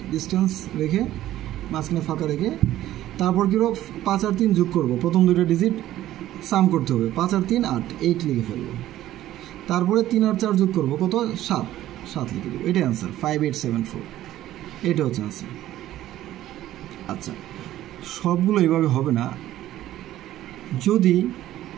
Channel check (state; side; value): quieter; left; 13.8 dB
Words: ডিস্টেন্স রেখে, মাঝখানে ফাঁকা রেখে। তারপর কি হবে? 5 আর 3 যোগ করবো, প্রথম দুইটা ডিজিট সাম করতে হবে। 5 আর 3 8, 8 লিখে ফেলবো। তারপরে 3 আর 4 যোগ করবো, কত? 7 লিখে দেবো। এটাই অ্যান্সার, 5874। এটা হচ্ছে অ্যান্সার। আচ্ছা, সবগুলো এইভাবে হবে না। যদি